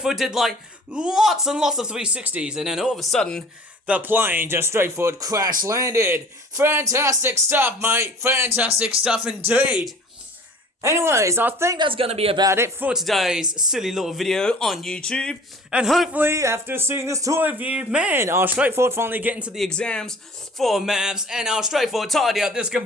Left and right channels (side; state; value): both; normal; correlation 0.46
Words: did like lots and lots of 360s, and then all of a sudden, the plane just straightforward crash landed. Fantastic stuff, mate. Fantastic stuff indeed. Anyways, I think that's going to be about it for today's silly little video on YouTube. And hopefully, after seeing this toy review, man, I'll straightforward finally get into the exams for maths, and I'll straightforward tidy up this